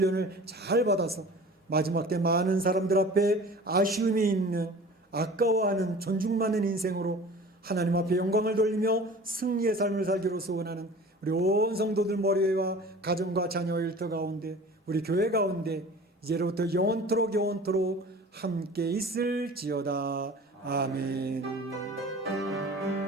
잘 받아서 마지막 때 많은 사람들 앞에 아쉬움이 있는, 아까워하는, 존중받는 인생으로 하나님 앞에 영광을 돌리며 승리의 삶을 살기로 소원하는 우리 온 성도들 머리와 가정과 자녀 일터 가운데 우리 교회 가운데 이제로부터 영원토록 함께 있을지어다. 아멘.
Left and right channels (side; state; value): both; normal; correlation 0.42